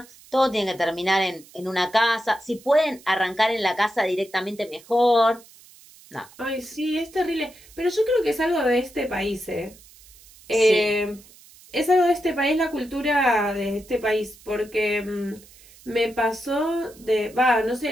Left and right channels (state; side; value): noise; right; hiss, 24 dB below the sound